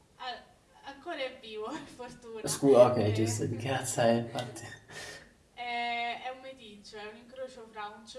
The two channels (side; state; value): both; identical; correlation 1.00